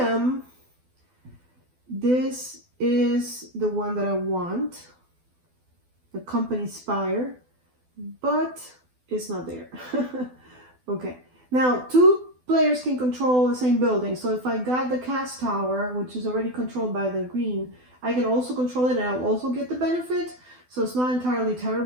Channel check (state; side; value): late; left; 12 ms